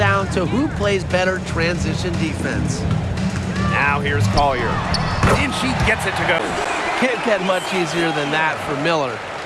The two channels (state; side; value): identical; both; correlation 1.00